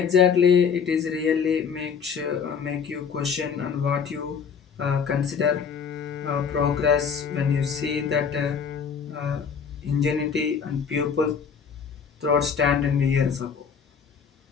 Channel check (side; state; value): right; quieter; 6.5 dB